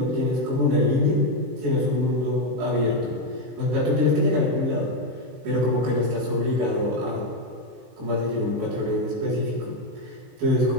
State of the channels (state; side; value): late; left; 23 ms